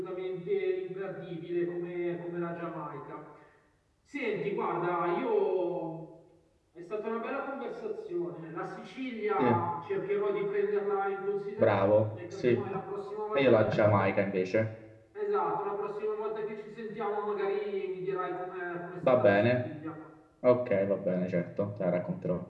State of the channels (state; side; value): identical; both; correlation 1.00